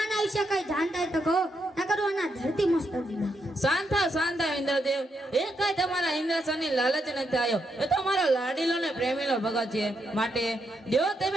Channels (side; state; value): both; normal; correlation 0.80